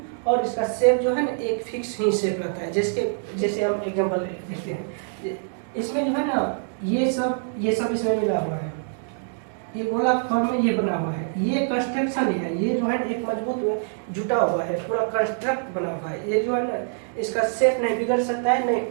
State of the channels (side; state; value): left; silent; digital silence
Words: और इसका शेप जो है ना एक फिक्स ही शेप रहता है। जैसे हम एग्जांपल देखते हैं, इसमें जो है ना ये सब इसमें मिला हुआ है, ये गोलाकार फॉर्म में ये बना हुआ है। ये कंस्ट्रक्शन है, ये जो है एक मजबूत जुटा हुआ है, पूरा कंस्ट्रक्ट बना हुआ है। ये जो है ना इसका शेप नहीं बिगड़ सकता है, नहीं